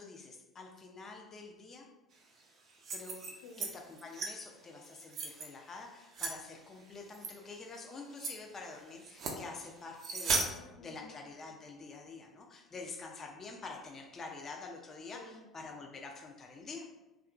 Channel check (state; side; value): normal; both; correlation 0.55